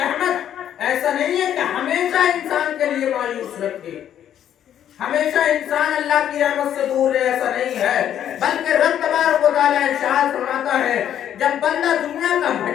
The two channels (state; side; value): quieter; right; 10.3 dB